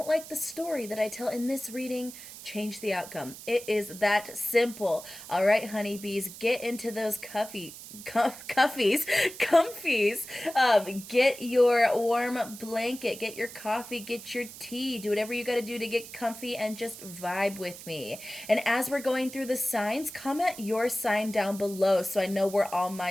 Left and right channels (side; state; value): right; noise; hiss, 14 dB below the sound